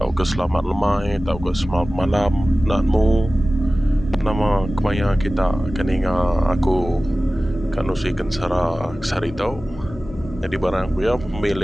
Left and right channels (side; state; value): both; normal; correlation 0.97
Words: ke selamat lemai, atau ke selamat malam, nakmu. Nama kemaya kita keninga aku kan usikan sari tau. Jadi barang aku ya